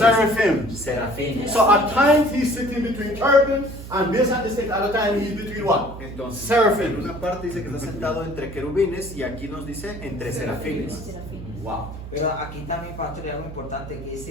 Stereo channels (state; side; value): noise; right; hum, 12 dB below the sound